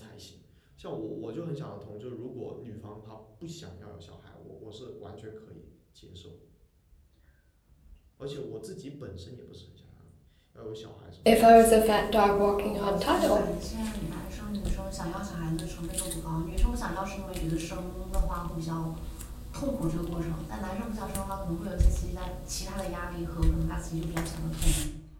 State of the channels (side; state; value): both; identical; correlation 1.00